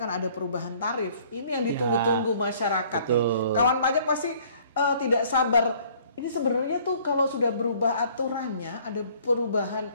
ada perubahan tarif. Ini yang ditunggu-tunggu masyarakat nih. Kawan pajak pasti tidak sabar. Ini sebenarnya tuh kalau sudah berubah aturannya, ada perubahan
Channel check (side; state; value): both; inverted; correlation -0.57